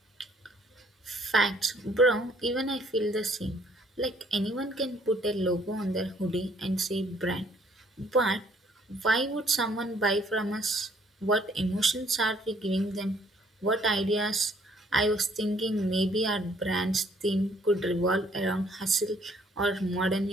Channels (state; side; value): normal; both; correlation 0.63